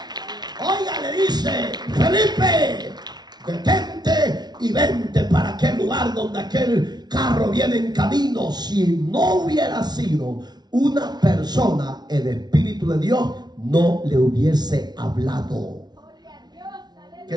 Oiga, le dice: Felipe, detente y vente para aquel lugar donde aquel carro viene en camino. Si no hubiera sido una persona, el Espíritu de Dios no le hubiese hablado. ¿Qué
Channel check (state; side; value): late; left; 0.20 ms